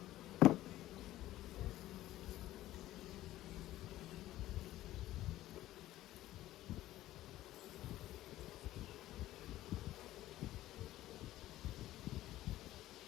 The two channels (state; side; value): quieter; right; 15.0 dB